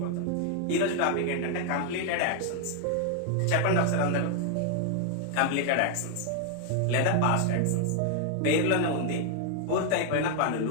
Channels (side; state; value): both; different; correlation 0.00